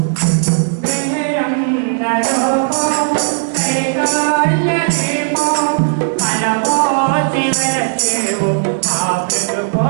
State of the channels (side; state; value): left; silent; digital silence